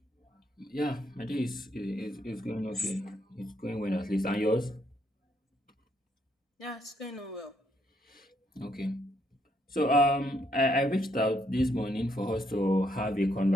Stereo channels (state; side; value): normal; both; correlation 0.74